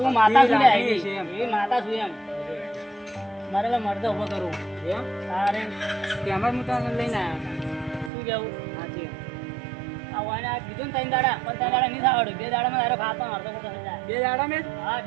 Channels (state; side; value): drops out; left; at 8.1 s